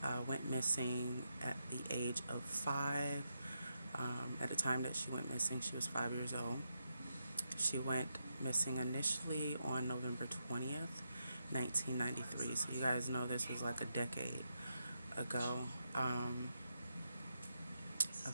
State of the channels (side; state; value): both; inverted; correlation -0.84